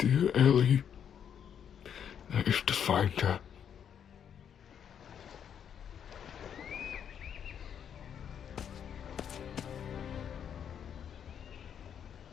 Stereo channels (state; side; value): quieter; right; 8.4 dB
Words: Ellie. I have to find her.